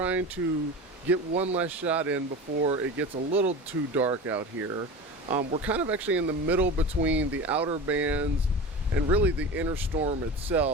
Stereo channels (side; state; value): both; normal; correlation 0.30